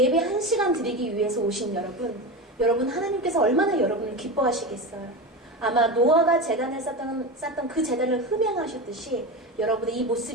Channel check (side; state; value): both; normal; correlation 0.22